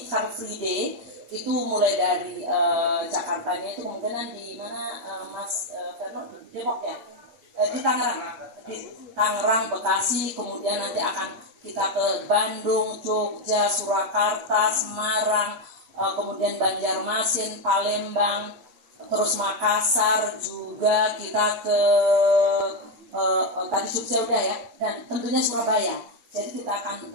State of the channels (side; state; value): left; late; 8.7 ms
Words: Car Free Day. Itu mulai dari Jakartanya itu kemungkinan di mana Mas Ferno, Depok ya, di Tangerang, Bekasi, kemudian nanti akan kita ke Bandung, Jogja, Surakarta, Semarang, kemudian Banjarmasin, Palembang, terus Makassar juga kita ke tadi Jogja udah ya, dan tentunya Surabaya. Jadi kita akan